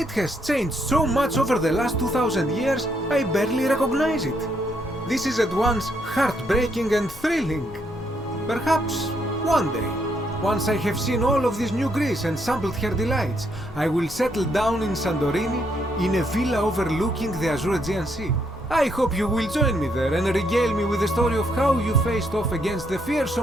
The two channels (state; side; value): normal; both; correlation 0.74